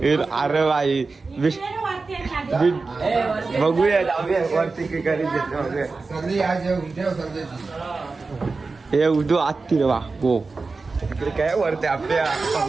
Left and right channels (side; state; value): left; quieter; 4.0 dB